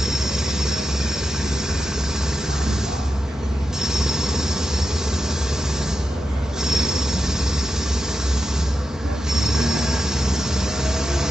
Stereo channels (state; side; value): normal; both; correlation 0.89